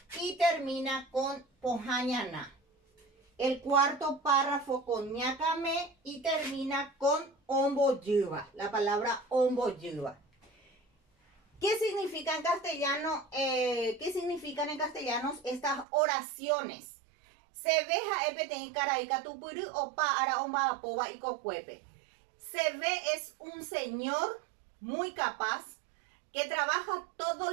y termina con pohã ñana. El cuarto párrafo con ñakame y termina con ombojýva, la palabra ombojýva. ¿Qué significan en castellano estas oraciones? Se ve ha'e peteĩ karai katupyry opa ára omba'apóva ikokuépe. Se ve es un señor muy capaz que trabaja todos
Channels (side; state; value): left; drops out; at 15.9 s